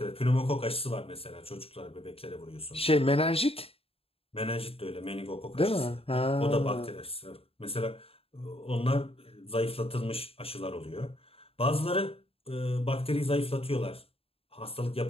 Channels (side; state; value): right; late; 0.28 ms